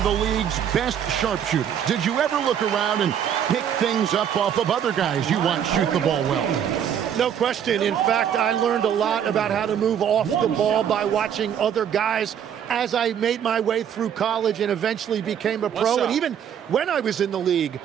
the league's best sharpshooters. Did you ever look around and pick things up off of other guys you watch shoot the ball well? No question. In fact, I learned a lot about how to move off the ball by watching other guys as I made my way through college and eventually became a pro. And even when I was in the league,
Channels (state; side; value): quieter; left; 8.9 dB